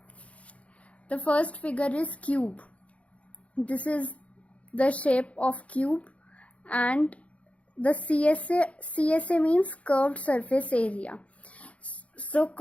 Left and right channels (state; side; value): late; right; 0.064 ms